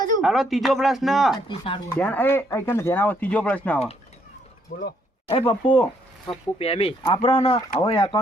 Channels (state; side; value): normal; both; correlation 0.70